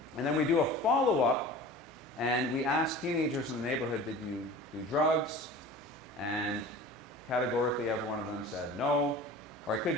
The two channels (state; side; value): normal; both; correlation 0.39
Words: And then we do a follow-up, and we ask teenagers in the neighborhood, did you do drugs? And categorically, every one of them said no. Or it